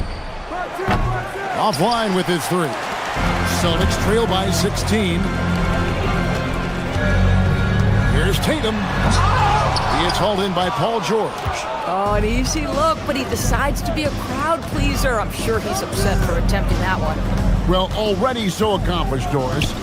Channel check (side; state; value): both; identical; correlation 1.00